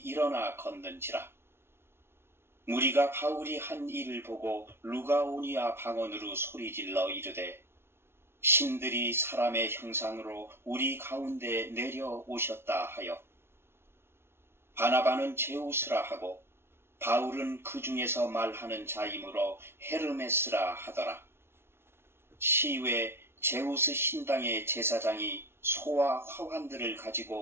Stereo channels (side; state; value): left; late; 0.12 ms